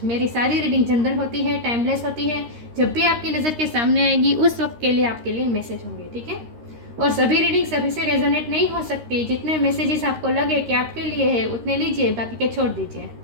मेरी सारी रीडिंग जनरल होती है, टाइमलेस होती है। जब भी आपकी नज़र के सामने आएगी उस वक्त के लिए आपके लिए मैसेज होंगे, ठीक है। और सभी रीडिंग सभी से रेजोनेट नहीं हो सकती। जितने मैसेजेस आपको लगे कि आपके लिए है उतने लीजिए, बाकी के छोड़ दीजिए।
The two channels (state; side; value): late; left; 13 ms